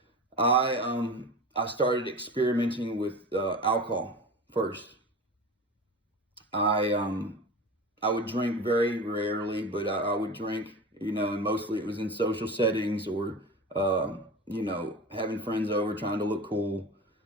I started experimenting with alcohol first. I would drink very rarely, but I would drink, and mostly it was in social settings or having friends over, trying to look cool.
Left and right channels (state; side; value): normal; both; correlation 0.31